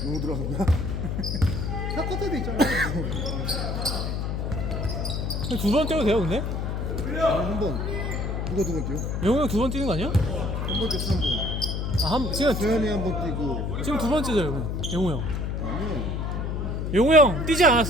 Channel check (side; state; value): left; noise; hum, 2 dB below the sound